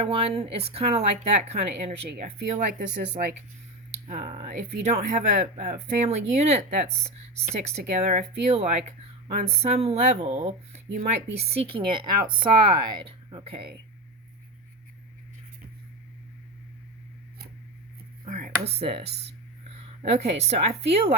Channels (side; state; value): both; normal; correlation 0.19